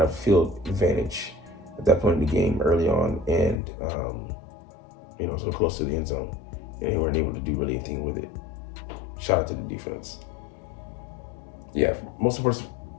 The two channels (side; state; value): right; drops out; at 3.6 s